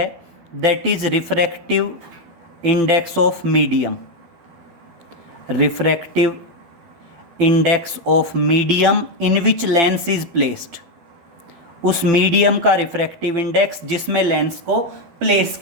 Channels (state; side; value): late; left; 12 ms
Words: that is refractive index of medium, refractive index of medium in which lens is placed, उस मीडियम का रिफ्रैक्टिव इंडेक्स जिसमें लेंस को प्लेस